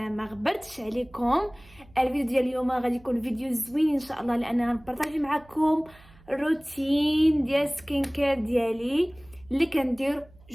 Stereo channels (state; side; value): noise; right; hum, 26 dB below the sound